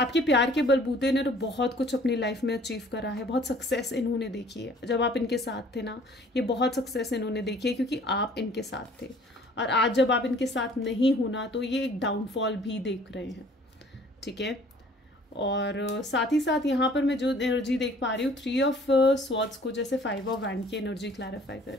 प्यार के बलबूते ने तो बहुत कुछ अपनी लाइफ में अचीव करा है, बहुत सक्सेस इन्होंने देखी है। जब आप इनके साथ थे ना, ये बहुत सक्सेस इन्होंने देखी है क्योंकि आप इनके साथ थे। और आज जब आप इनके साथ नहीं होना तो ये एक डाउनफॉल भी देख रहे हैं, ठीक है। और साथ ही साथ यहाँ पर मैं जो एनर्जी देख पा रही हूँ, 3 ऑफ स्वॉर्ड्स को जैसे 5 ऑफ वैंड की एनर्जी क्लैरिफाई कर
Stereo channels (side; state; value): both; normal; correlation 0.54